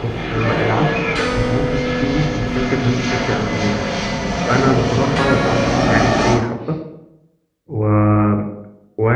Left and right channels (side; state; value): both; identical; correlation 1.00